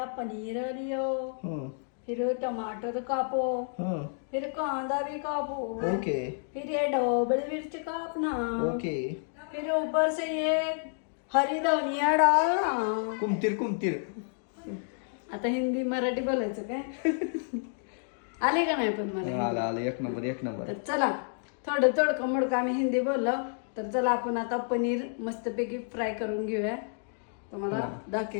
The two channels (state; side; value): silent; right; digital silence